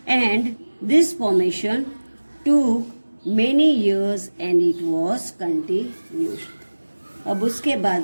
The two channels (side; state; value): both; inverted; correlation -1.00